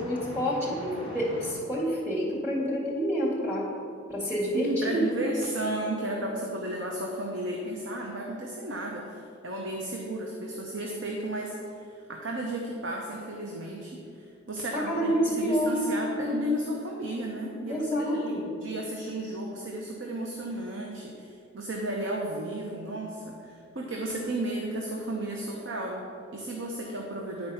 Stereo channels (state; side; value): normal; both; correlation 0.43